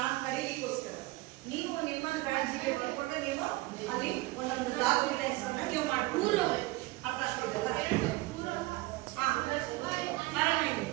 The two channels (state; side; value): quieter; left; 20.4 dB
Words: ಕರೀಲಿಕ್ಕೋಸ್ಕರ. ನೀವು ನಿಮ್ಮ ಬ್ಯಾಡ್ಜಿಗೆ ಬರ್ಕೊಂಡ್ರೆ ನೀವು ಅಲ್ಲಿ ಒಂದೊಂದು ಡಾಕ್ಯುಮೆಂಟ್ಸ್ ಅನ್ನ ನೀವು ಮಾಡ್ಕೊಂಡು ಅರ್ಥ ಆಗ್ತಿದ್ದಲ್ಲ?